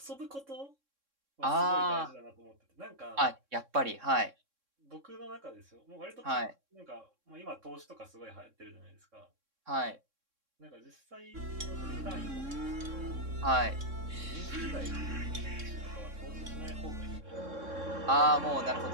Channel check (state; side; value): late; left; 3.6 ms